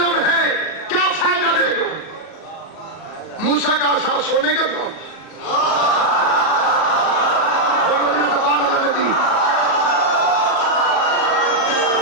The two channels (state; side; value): late; right; 37 ms